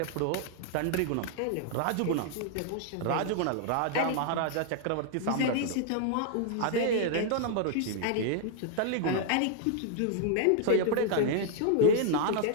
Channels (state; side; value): different; both; correlation -0.01